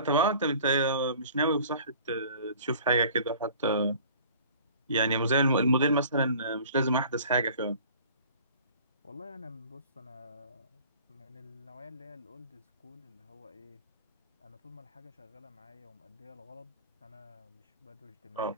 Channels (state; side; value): inverted; both; correlation -0.47